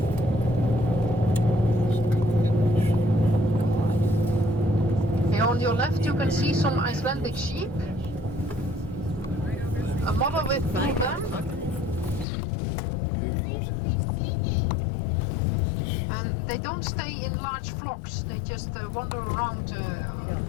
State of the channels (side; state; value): right; drops out; at 12.2 s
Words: on your left you can see some Icelandic sheep. A mother with two of them. And they don't stay in large flocks, they just wander around